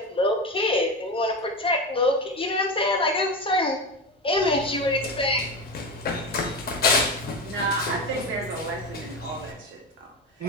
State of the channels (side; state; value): both; normal; correlation 0.21